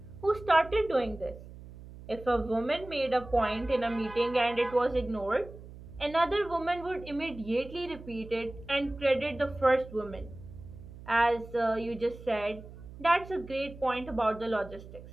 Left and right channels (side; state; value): right; noise; hum, 16 dB below the sound